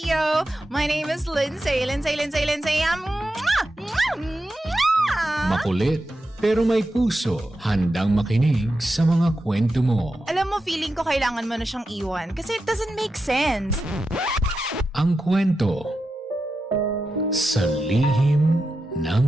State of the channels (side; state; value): both; normal; correlation 0.89